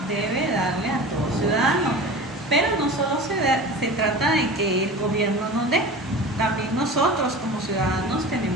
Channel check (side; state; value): both; normal; correlation 0.35